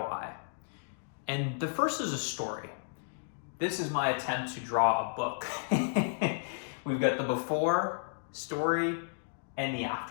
And the first is a story. This is my attempt to draw a book. We've got the before story and the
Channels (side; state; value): right; silent; digital silence